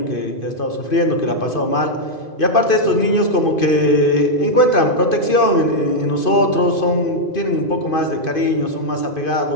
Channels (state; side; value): late; right; 2.5 ms